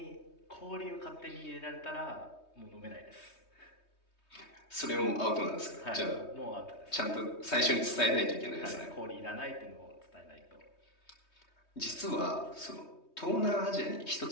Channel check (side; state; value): right; late; 3.2 ms